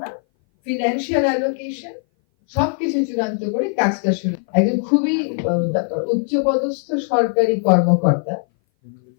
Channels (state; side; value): silent; right; 59 dB below the other